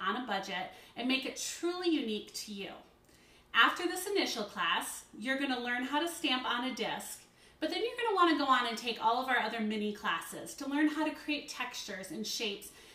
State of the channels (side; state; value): both; identical; correlation 1.00